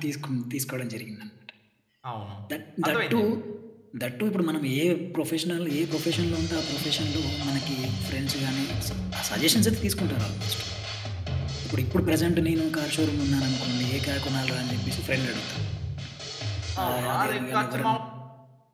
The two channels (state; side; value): identical; both; correlation 1.00